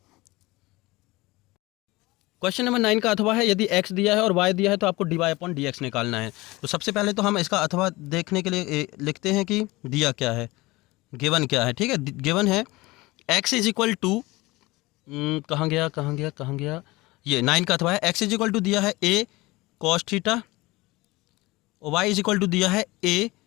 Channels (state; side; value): quieter; right; 21.3 dB